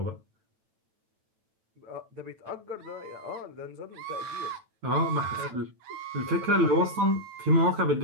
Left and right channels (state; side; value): late; left; 9.0 ms